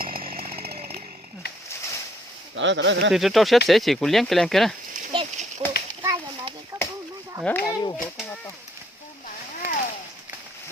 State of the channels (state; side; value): normal; both; correlation 0.66